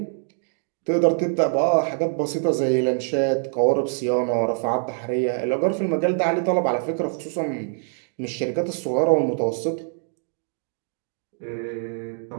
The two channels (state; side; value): silent; left; digital silence